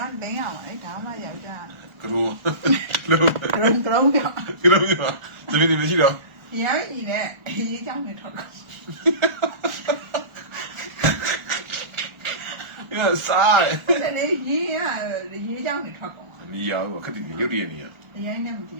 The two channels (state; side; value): late; left; 1.4 ms